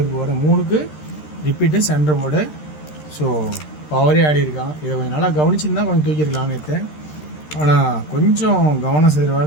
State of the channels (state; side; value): late; right; 13 ms